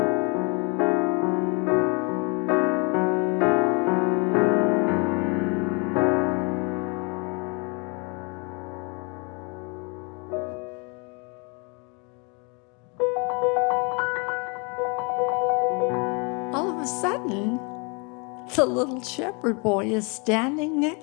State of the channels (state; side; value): quieter; right; 32.1 dB